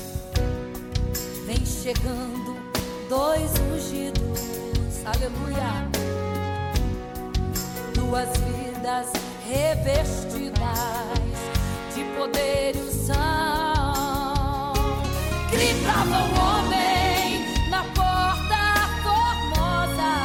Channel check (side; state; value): both; identical; correlation 1.00